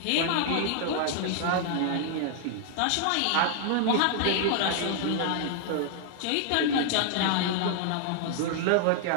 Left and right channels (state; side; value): different; both; correlation -0.01